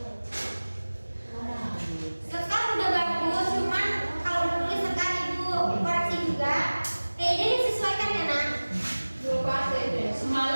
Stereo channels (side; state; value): both; inverted; correlation -1.00